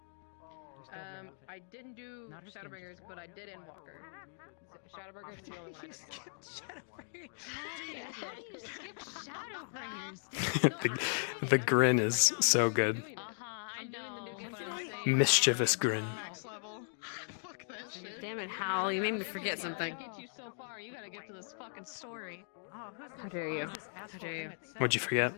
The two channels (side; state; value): right; silent; digital silence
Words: I didn't do Shadowbringers, but I did Endwalker. Shadowbringers is the only one I did. How do you skip Shadowbringers? the grin is so good. I know, but I'm saying Mischievous grin. max level. Fuck that shit. Damn it, Hal! You made me forget something. Get you so far, you gotta get to this fucking story. How dare you? How dare you? What'd you forget?